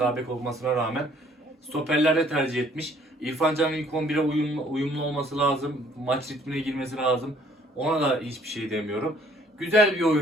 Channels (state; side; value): normal; both; correlation 0.61